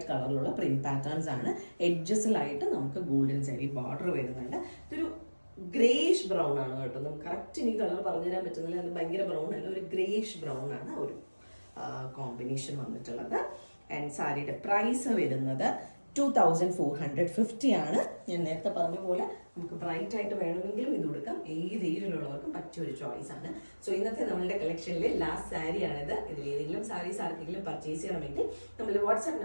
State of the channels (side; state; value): both; inverted; correlation -1.00